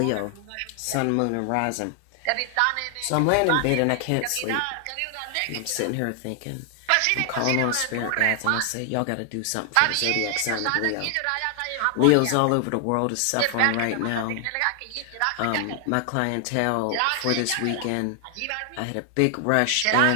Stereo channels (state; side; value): different; both; correlation 0.00